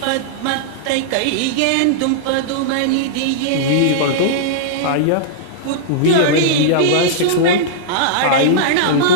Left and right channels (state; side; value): different; both; correlation -0.02